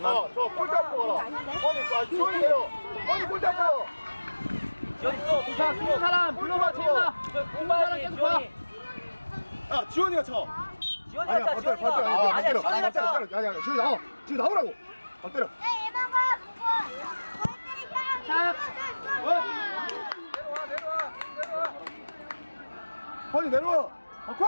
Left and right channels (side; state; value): both; inverted; correlation -1.00